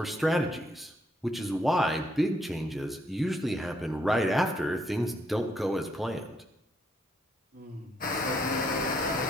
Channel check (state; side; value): normal; both; correlation 0.73